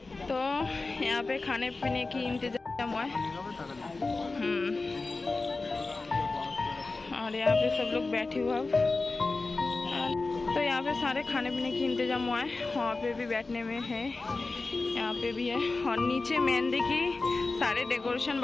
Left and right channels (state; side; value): quieter; right; 3.6 dB